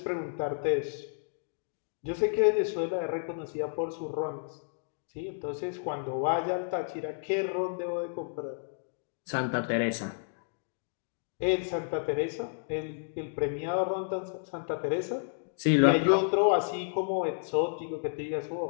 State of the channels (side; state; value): right; silent; digital silence